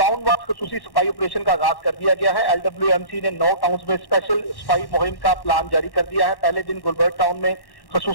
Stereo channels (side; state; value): right; late; 1.1 ms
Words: वाइज खसूसी सफाई ऑपरेशन का आगाज कर दिया गया है। LWMC ने 9 टाउन्स में स्पेशल सफाई मुहिम का प्लान जारी कर दिया है। पहले दिन गुलबर्ग टाउन में